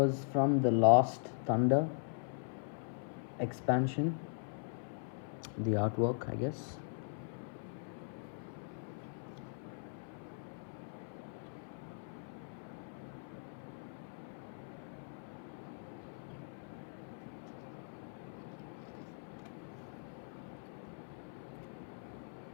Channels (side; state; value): right; silent; 51 dB below the other